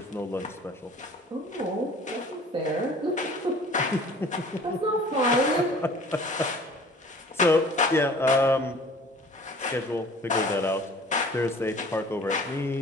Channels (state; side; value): normal; both; correlation 0.48